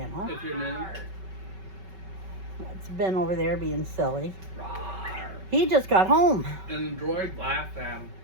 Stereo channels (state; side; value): late; left; 5.3 ms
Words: If you're new. It's Ben over there being silly. He just got home. And the droid laughed at him.